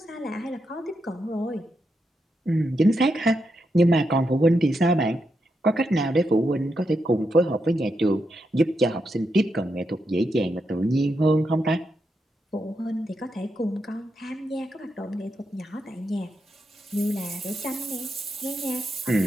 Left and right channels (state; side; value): normal; both; correlation 0.84